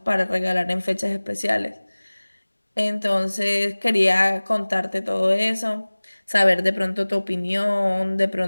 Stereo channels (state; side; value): inverted; both; correlation -1.00